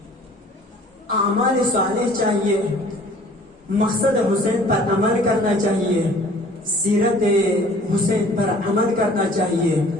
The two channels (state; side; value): normal; both; correlation 0.51